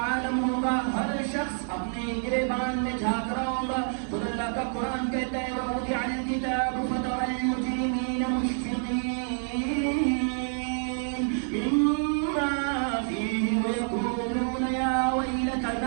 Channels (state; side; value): silent; left; 59 dB below the other